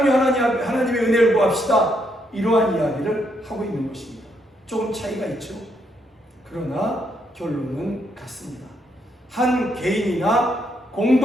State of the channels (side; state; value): both; normal; correlation 0.75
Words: 하나님의 은혜를 구합시다. 이러한 이야기를 하고 있는 것입니다. 조금 차이가 있죠. 그러나 결론은 같습니다. 한 개인이나